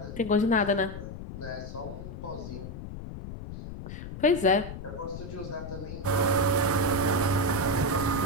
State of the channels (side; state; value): left; noise; rumble, 10 dB below the sound